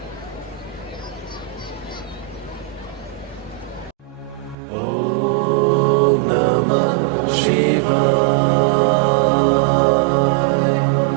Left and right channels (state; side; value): drops out; left; at 4.5 s